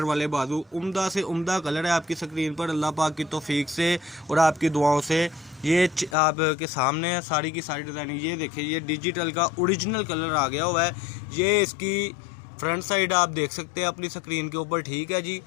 वाले बाजू उम्दा से उम्दा कलर है आपकी स्क्रीन पर। अल्लाह पाक की तौफीक से और आपकी दुआओं से ये आपके सामने है सारी की सारी डिज़ाइनिंग। ये देखें, ये डिजिटल का ओरिजिनल कलर आ गया हुआ है। ये इसकी फ्रंट साइड आप देख सकते हैं अपनी स्क्रीन के ऊपर, ठीक है जी।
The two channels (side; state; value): right; drops out; at 6.2 s